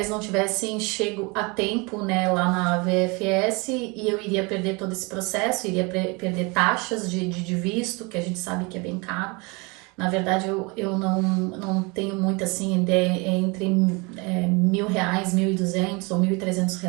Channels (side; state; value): left; quieter; 28.4 dB